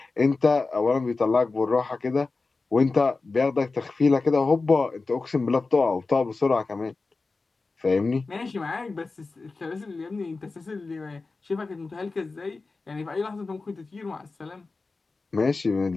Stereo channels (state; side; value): quieter; right; 3.8 dB